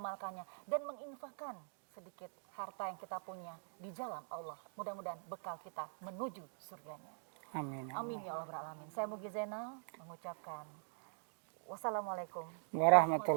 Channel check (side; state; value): left; silent; digital silence